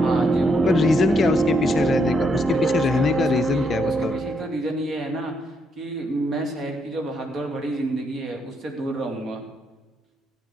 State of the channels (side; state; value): both; normal; correlation 0.77